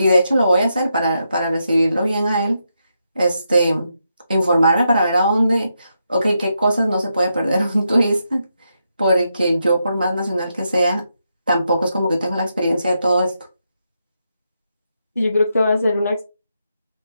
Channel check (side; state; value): both; inverted; correlation -0.83